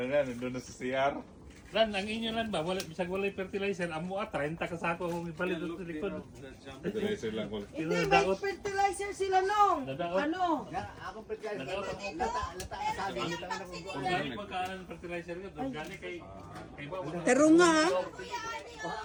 na, nandun na sa CR. Lan, ang inyo lan ba? Wala, bisag walay fertilizer. Amo 30 ka sako kung ipalit sa likod. Fertilizer lang ko. Hindi, may fertilizer sila nung. Nadaot. Ano? Kung gani pagkaan ng fertilizer ka, doon gani kay ba? Pero nga, ha?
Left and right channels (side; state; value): both; identical; correlation 1.00